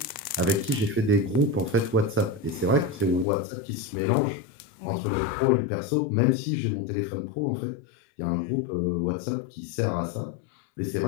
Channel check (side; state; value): right; drops out; at 3.2 s